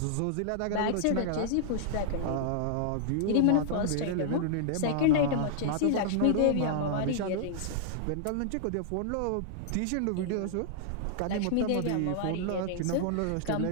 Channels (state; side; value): different; both; correlation -0.01